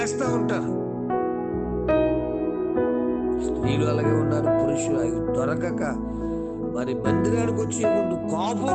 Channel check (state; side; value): identical; both; correlation 1.00